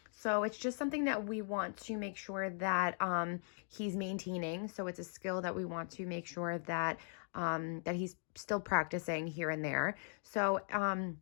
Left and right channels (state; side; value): silent; right; 52 dB below the other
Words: So it's just something that we want to make sure that he's maintaining. So it's a skill that we want to make sure that that he's still practicing here and there. So